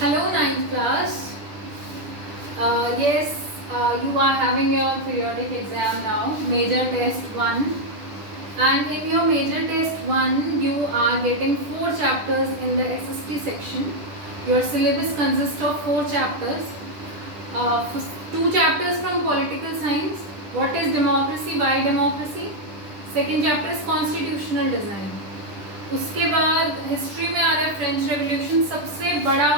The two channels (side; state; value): left; late; 10 ms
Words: Hello, ninth class. Yes, you are having your periodic exam now, major test 1. And in your major test 1, you are getting 4 chapters in the SST section. Your syllabus consists of 4 chapters. 2 chapters from political science. What is democracy? Why democracy? Second chapter is constitutional design. उसके बाद history में आ रहा है French revolution, सबसे बड़ा